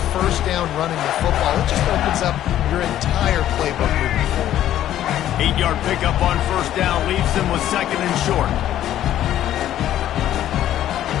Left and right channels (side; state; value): right; quieter; 12.2 dB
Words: first down running the football, it just opens up your entire playbook moving forward. 8-yard pickup on first down leaves them with 2nd and short.